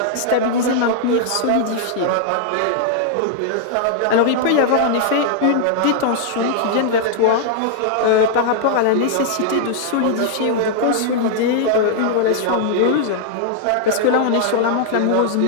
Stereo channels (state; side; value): different; both; correlation -0.01